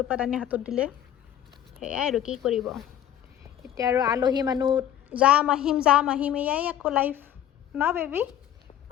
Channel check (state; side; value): quieter; right; 10.9 dB